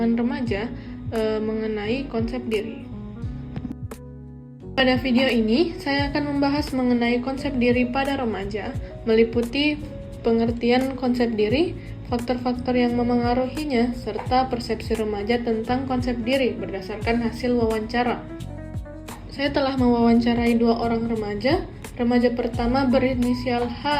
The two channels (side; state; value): both; identical; correlation 1.00